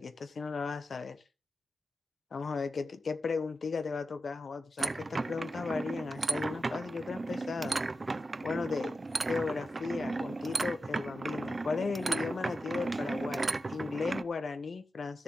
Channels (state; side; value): normal; both; correlation 0.90